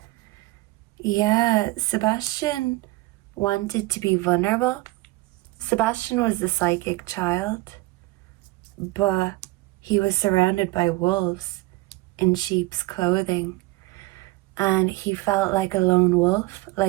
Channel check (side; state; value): left; quieter; 20.5 dB